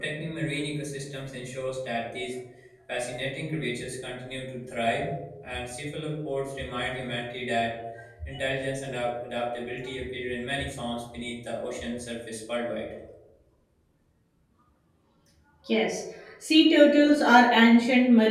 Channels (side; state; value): both; identical; correlation 1.00